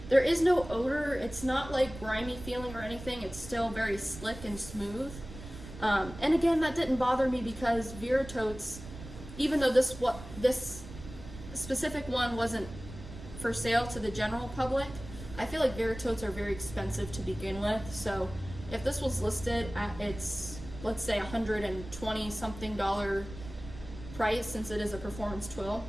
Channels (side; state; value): right; noise; rumble, 13 dB below the sound